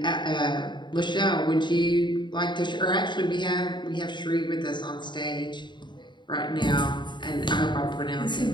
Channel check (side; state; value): right; late; 0.22 ms